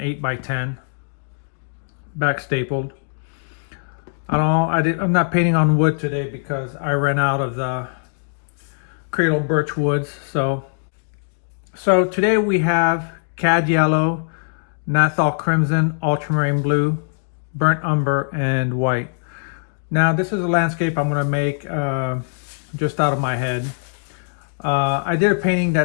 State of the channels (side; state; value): right; silent; digital silence